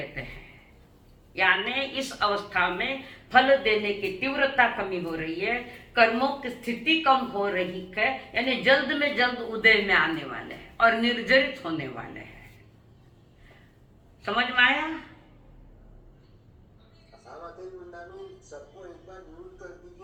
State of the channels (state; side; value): identical; both; correlation 1.00